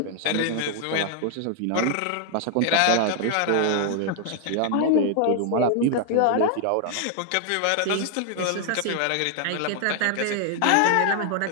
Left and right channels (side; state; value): both; different; correlation 0.00